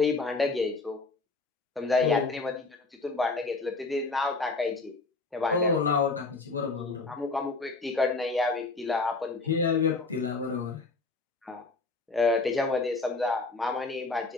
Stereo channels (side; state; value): right; quieter; 3.6 dB